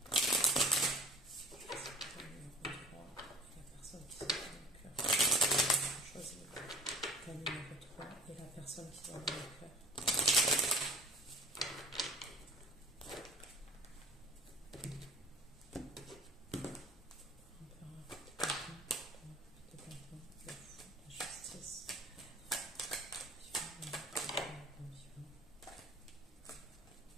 Et la personne qui va dans le cœur.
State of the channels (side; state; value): both; normal; correlation 0.48